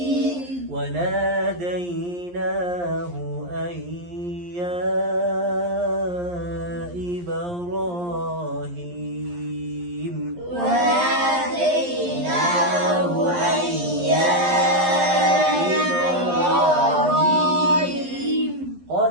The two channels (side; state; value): left; late; 11 ms